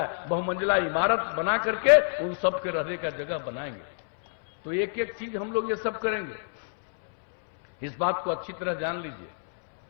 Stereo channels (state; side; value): silent; right; 60 dB below the other